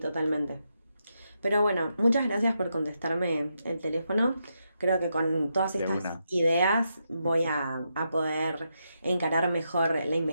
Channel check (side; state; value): both; inverted; correlation -0.83